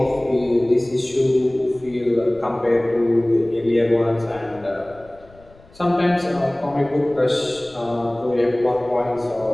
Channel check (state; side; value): noise; left; rumble, 25 dB below the sound